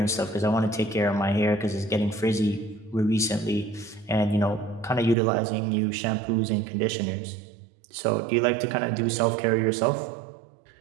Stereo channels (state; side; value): drops out; left; at 5.2 s